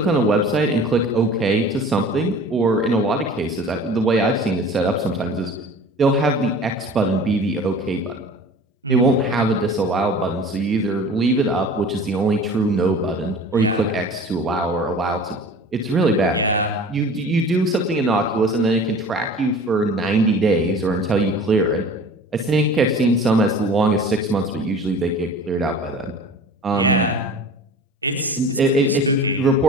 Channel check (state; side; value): normal; both; correlation 0.42